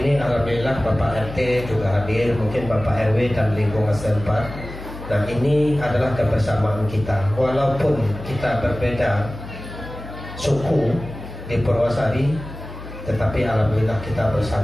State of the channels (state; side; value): noise; left; hum, 11 dB below the sound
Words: alhamdulillah Bapak RT juga hadir, mungkin Bapak RW dan lingkungan setempat. Dan ini adalah kebersamaan kita. Walaupun kita berbeda suku di Purwosari, tetapi alhamdulillah kita